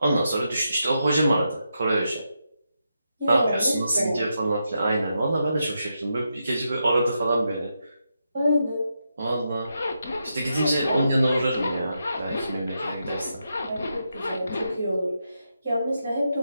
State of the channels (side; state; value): both; inverted; correlation -0.84